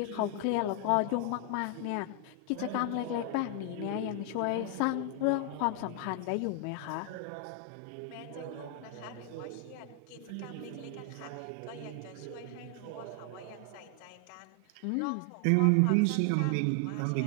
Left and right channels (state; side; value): different; both; correlation 0.00